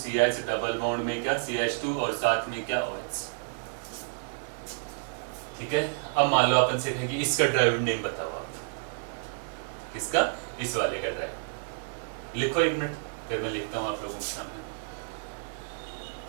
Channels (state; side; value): quieter; left; 36.4 dB